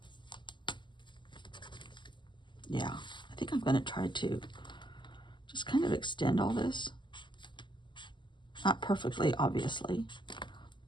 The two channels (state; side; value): late; right; 0.22 ms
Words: yeah, I think I'm going to try to just kind of extend all this. Not perfectly, obviously.